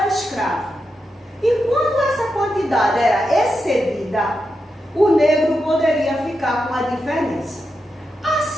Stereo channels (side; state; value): both; normal; correlation 0.87